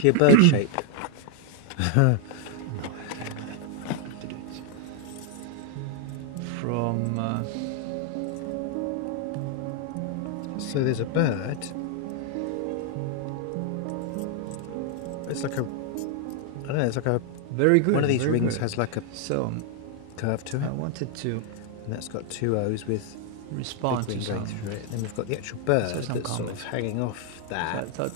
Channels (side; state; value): both; different; correlation 0.00